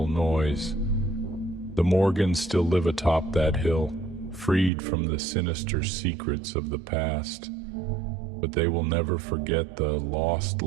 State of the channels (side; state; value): left; drops out; at 4.7 s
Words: noise. The Morgans still live atop that hill, freed from the sinister secrets of the past, but they will never forget the lost